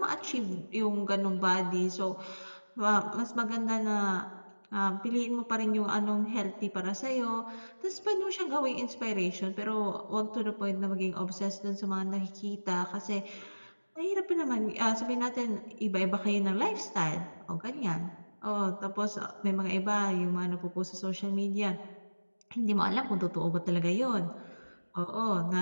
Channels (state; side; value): inverted; both; correlation -1.00